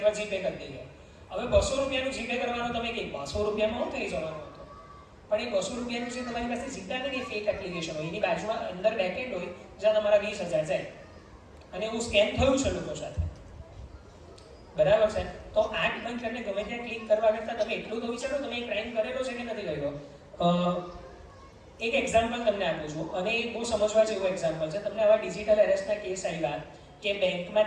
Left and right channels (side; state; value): both; identical; correlation 1.00